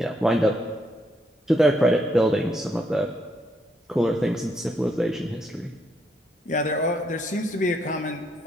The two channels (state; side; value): normal; both; correlation 0.74